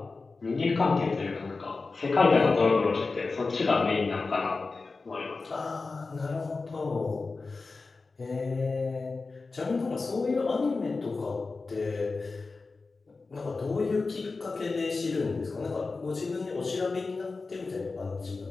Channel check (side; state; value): right; quieter; 4.0 dB